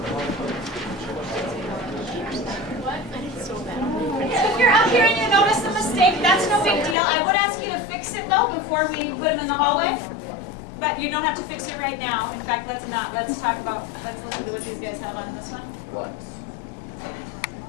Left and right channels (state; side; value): drops out; right; at 7.0 s